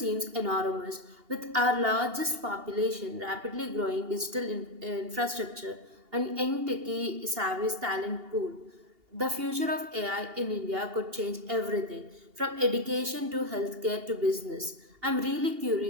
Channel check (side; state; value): left; late; 2.8 ms